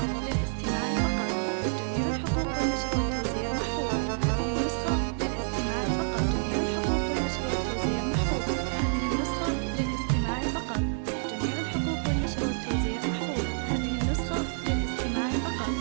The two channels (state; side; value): silent; left; digital silence